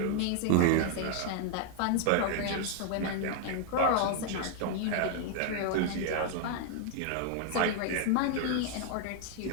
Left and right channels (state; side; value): different; both; correlation 0.00